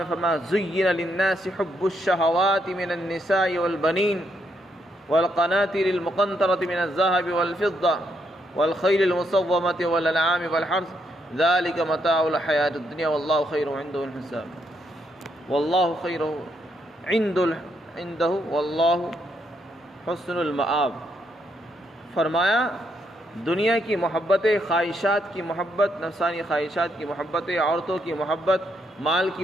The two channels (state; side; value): normal; both; correlation 0.76